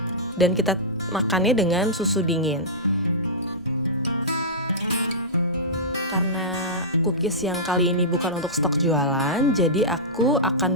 dan kita makannya dengan susu dingin. Karena cookies yang kali ini bukan untuk stok jualan, jadi aku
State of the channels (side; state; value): both; normal; correlation -0.15